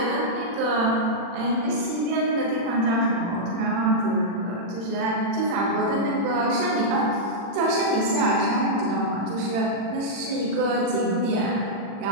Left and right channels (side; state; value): left; late; 40 ms